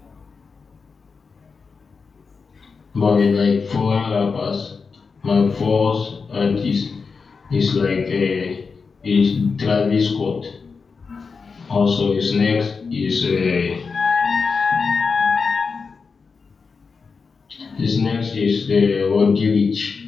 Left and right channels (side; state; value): right; quieter; 5.0 dB